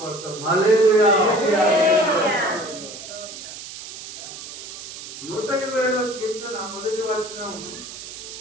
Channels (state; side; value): noise; right; hiss, 12 dB below the sound